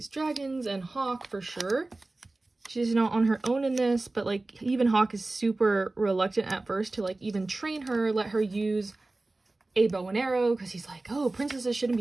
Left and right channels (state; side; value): quieter; left; 3.0 dB